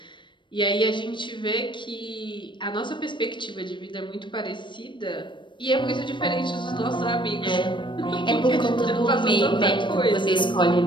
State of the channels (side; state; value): right; late; 0.23 ms